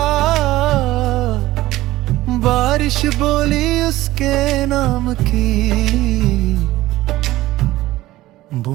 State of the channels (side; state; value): left; quieter; 16.7 dB